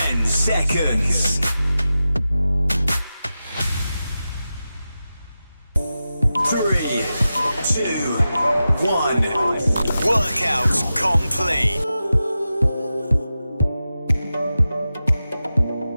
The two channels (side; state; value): both; inverted; correlation -0.92